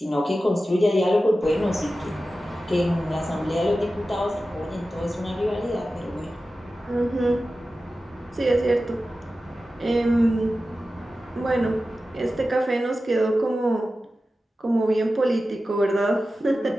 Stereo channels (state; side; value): normal; both; correlation 0.94